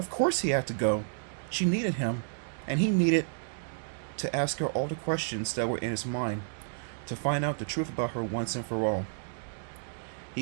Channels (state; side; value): silent; left; digital silence